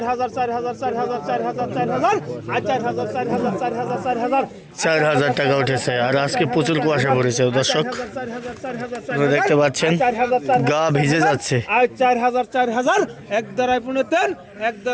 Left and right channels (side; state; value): both; identical; correlation 1.00